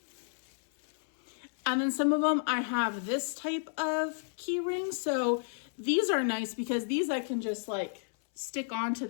And then some of them I have this type of key ring. So these are nice because these I can just like stick onto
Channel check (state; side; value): silent; right; 56 dB below the other